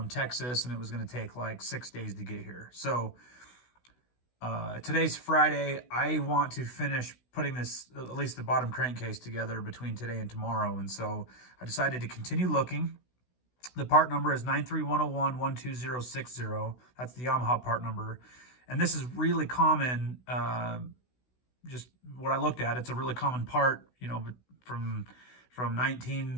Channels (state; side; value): late; right; 16 ms